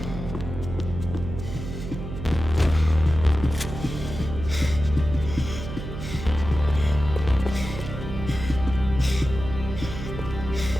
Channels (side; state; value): right; noise; hum, 8 dB below the sound